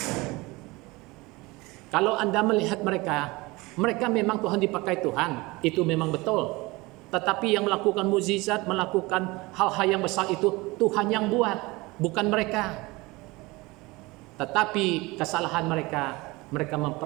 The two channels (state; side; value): quieter; left; 22.8 dB